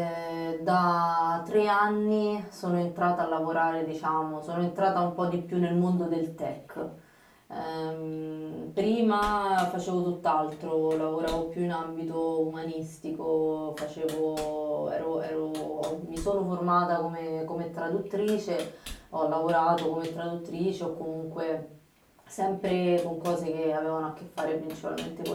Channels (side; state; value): both; identical; correlation 1.00